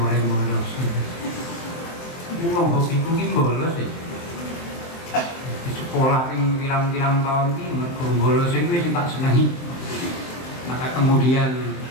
bolos. Wong hobiku ki bolos ya. Di sekolah ping pirang-pirang tahun iki mergo bolos iku wis tak senengi. Maka kemudian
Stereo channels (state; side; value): late; right; 23 ms